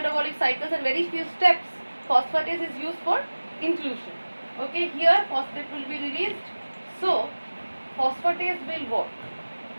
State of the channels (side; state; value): both; inverted; correlation -1.00